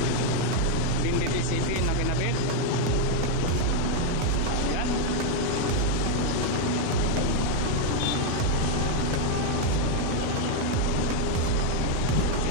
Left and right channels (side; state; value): both; different; correlation 0.00